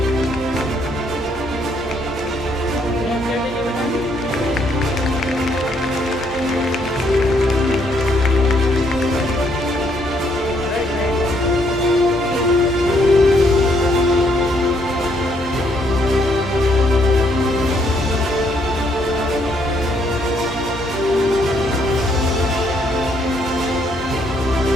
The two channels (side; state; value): both; normal; correlation 0.70